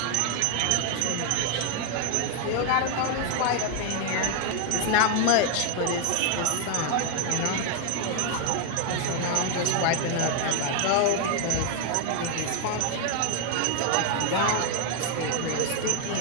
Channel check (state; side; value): different; both; correlation 0.01